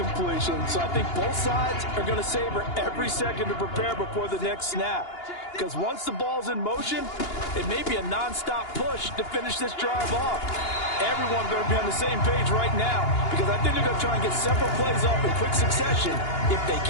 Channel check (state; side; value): late; right; 2.8 ms